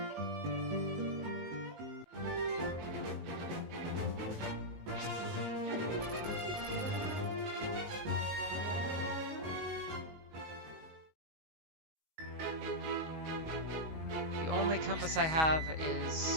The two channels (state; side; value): late; left; 19 ms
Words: The only compass I have